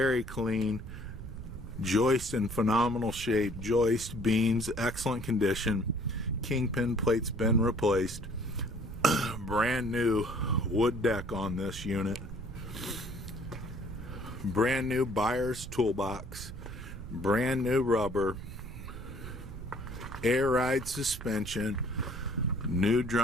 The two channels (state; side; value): noise; right; rumble, 10 dB below the sound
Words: clean, joist in phenomenal shape, joist, beams, excellent condition, kingpin plates been replaced, brand new wood deck on this unit, brand new buyer's toolbox, brand new rubber, air ride suspension, new